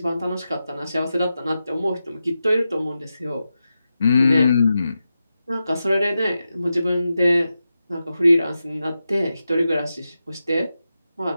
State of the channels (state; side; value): inverted; both; correlation -0.90